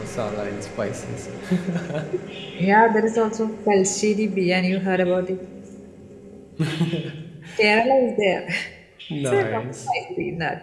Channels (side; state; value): both; identical; correlation 1.00